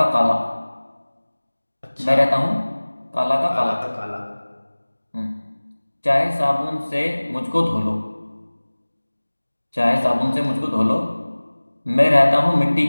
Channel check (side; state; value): both; inverted; correlation -1.00